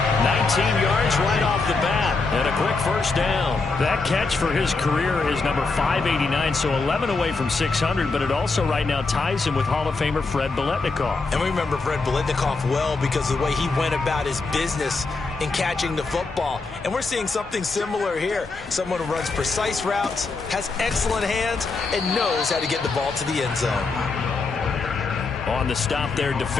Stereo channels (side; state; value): right; quieter; 4.0 dB